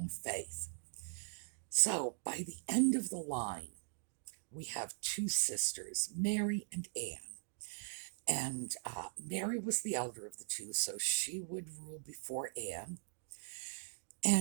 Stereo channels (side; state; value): left; silent; digital silence